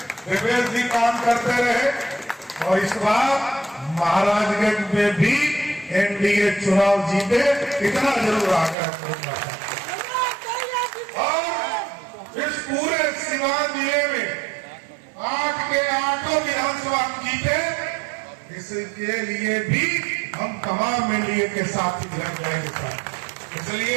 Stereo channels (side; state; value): left; drops out; at 8.8 s